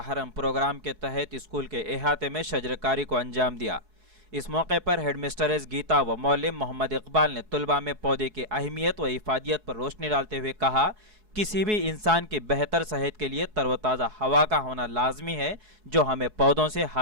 हरम प्रोग्राम के तहत स्कूल के अहाते में शजरकारी को अंजाम दिया। इस मौके पर हेडमिस्ट्रेस गीता व मौलिम मोहम्मद इकबाल ने तलबा में पौधे की अहमियत व इफादियत पर रोशनी डालते हुए कहा, किसी भी इंसान की बेहतर सेहत के लिए तरोताज़ा हवा का होना लाजमी है, जो हमें पौधों से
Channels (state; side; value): late; left; 4.7 ms